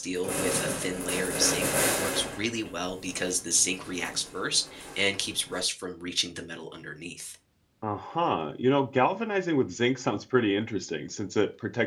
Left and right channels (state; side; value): identical; both; correlation 1.00